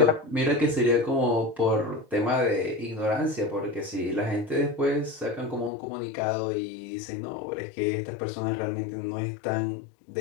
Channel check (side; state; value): right; drops out; at 5.7 s